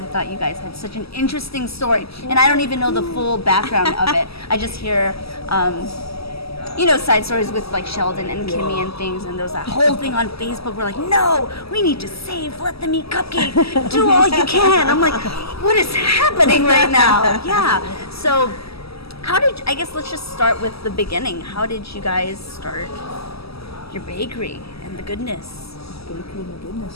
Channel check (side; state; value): right; late; 0.76 ms